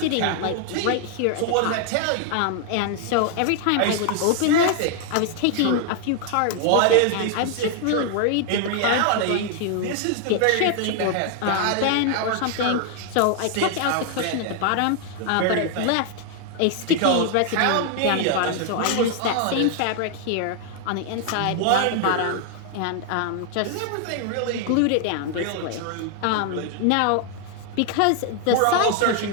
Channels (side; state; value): both; different; correlation 0.00